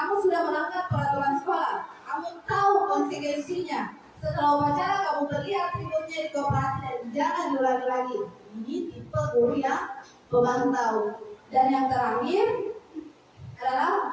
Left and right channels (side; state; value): both; identical; correlation 1.00